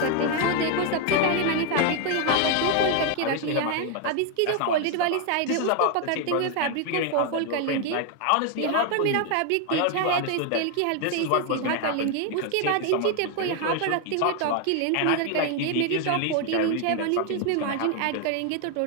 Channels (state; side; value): different; both; correlation 0.01